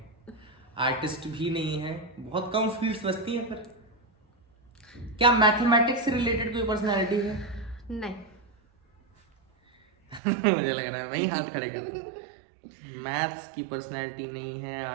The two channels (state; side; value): drops out; left; at 10.2 s